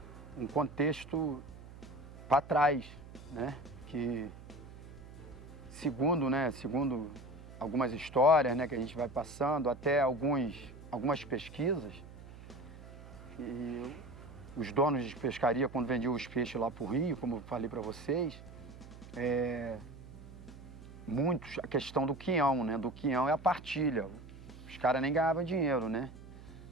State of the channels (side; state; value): right; noise; hum, 16 dB below the sound